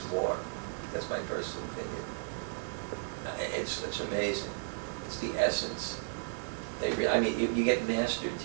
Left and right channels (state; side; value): silent; left; digital silence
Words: more. That's my personal opinion. It's amazing. It's the essence. You get master